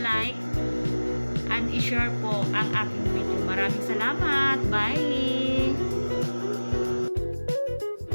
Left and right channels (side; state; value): both; inverted; correlation -1.00